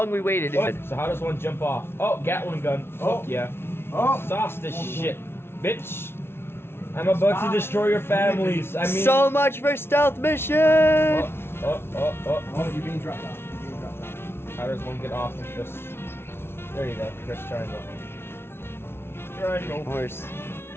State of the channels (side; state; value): right; late; 0.12 ms